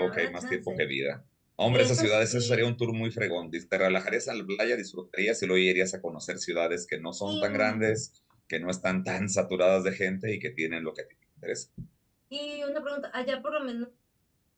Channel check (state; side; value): identical; both; correlation 1.00